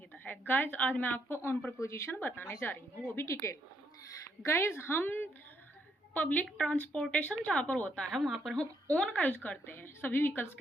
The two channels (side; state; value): both; normal; correlation 0.74